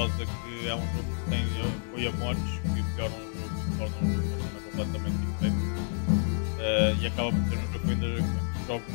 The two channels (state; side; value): silent; right; 58 dB below the other